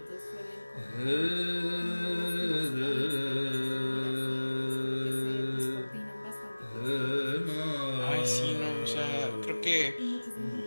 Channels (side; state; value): both; inverted; correlation -1.00